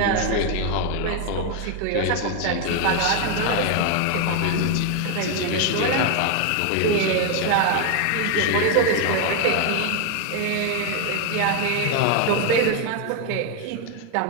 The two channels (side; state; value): both; different; correlation 0.01